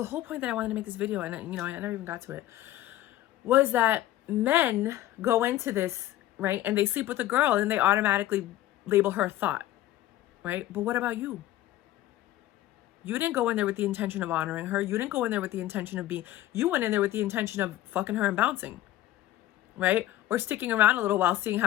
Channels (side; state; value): right; quieter; 14.3 dB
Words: whole point that I wanted to make this video, and I never even got to it, was that men go into this, right, and they sleep with a girl and they automatically label her a thought, right? But what about you? You didn't go in there with the intention of honoring her. You didn't go in there with the intention of you went in there with the intention of fucking her and bouncing, right? Or sticking around a little while, seeing